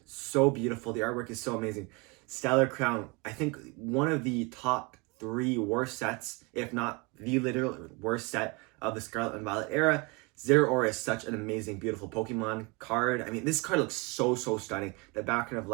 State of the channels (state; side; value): quieter; left; 28.0 dB